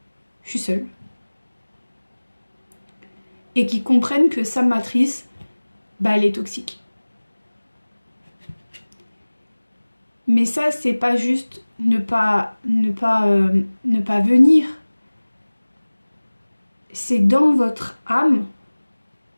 je suis seule. Et qu'ils comprennent que sa matrice, bah, elle est toxique. Mais ça, c'est pas juste ne pas venir. C'est dans votre âme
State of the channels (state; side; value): inverted; both; correlation -1.00